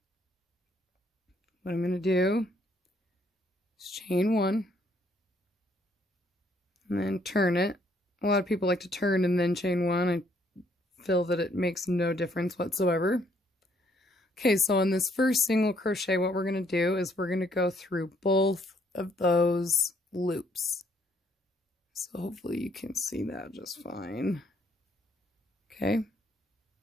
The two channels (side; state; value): both; normal; correlation 0.68